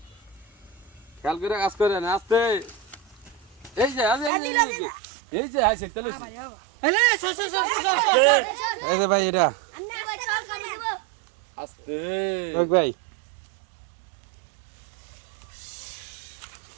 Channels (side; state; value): left; drops out; at 4.3 s